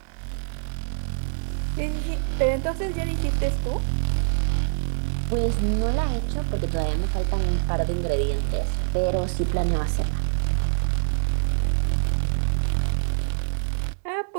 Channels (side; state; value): left; silent; digital silence